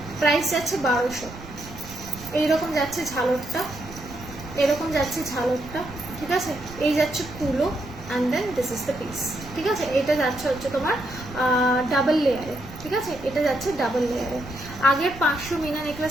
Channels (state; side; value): noise; right; rumble, 15 dB below the sound